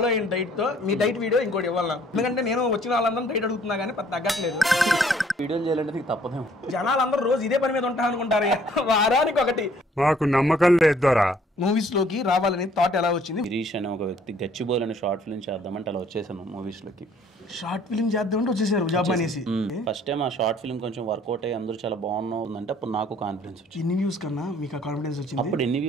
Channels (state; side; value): normal; both; correlation 0.60